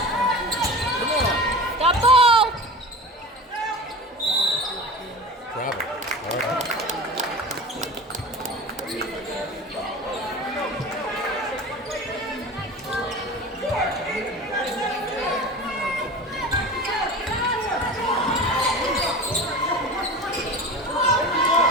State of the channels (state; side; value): normal; both; correlation 0.33